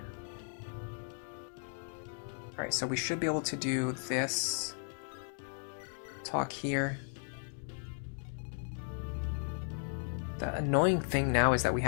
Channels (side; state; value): right; silent; 54 dB below the other